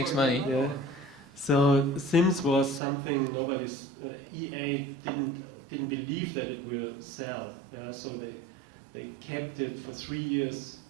money. Yeah. So Sims was something nobody's. EA didn't believe that it will sell. Yeah. So they kept it for 3 years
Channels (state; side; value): drops out; left; at 2.8 s